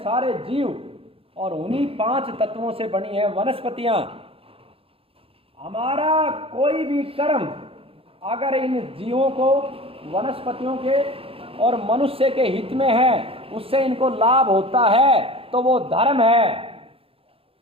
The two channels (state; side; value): late; left; 0.27 ms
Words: सारे जीव और उन्हीं 5 तत्वों से बनी है वनस्पतियां। हमारा कोई भी कर्म अगर इन जीवों को, वनस्पतियों के और मनुष्य के हित में है, उससे इनको लाभ होता है तो वो धर्म है,